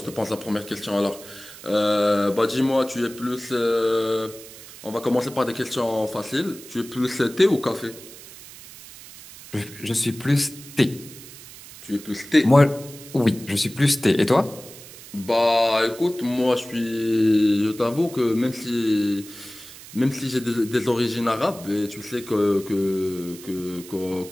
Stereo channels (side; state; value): right; noise; hiss, 17 dB below the sound